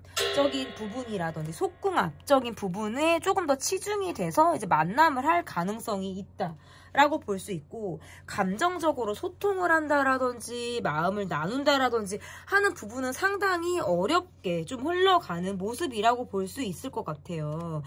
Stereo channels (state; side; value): identical; both; correlation 1.00